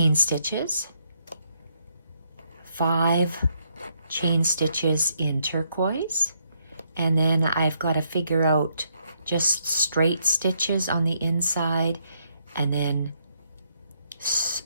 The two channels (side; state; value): both; inverted; correlation -0.75